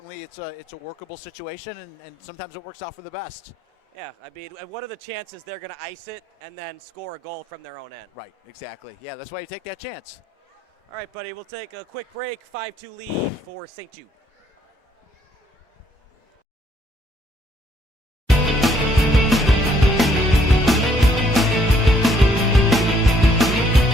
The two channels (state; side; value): normal; both; correlation 0.68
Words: it's a workable situation, and sometimes it works out for the best. Yeah, I mean, what are the chances they're going to ice it and then score a goal from their own end? Right, exactly. Yeah, that's why you take that chance. All right, buddy, we'll take a quick break. 5-2 lead for St. Jude.